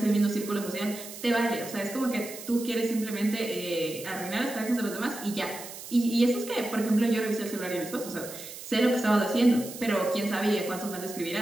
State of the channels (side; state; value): right; noise; hiss, 12 dB below the sound